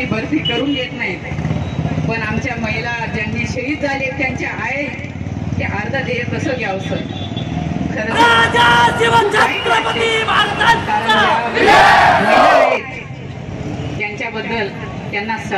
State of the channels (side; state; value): both; identical; correlation 1.00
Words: भरती करून घेत नाहीत. पण आमच्या महिला ज्यांनी शहीद झाले त्यांच्या आई ते अर्ध देय कसं घ्यावं सर. खरं त्यांच्याबद्दल त्यांना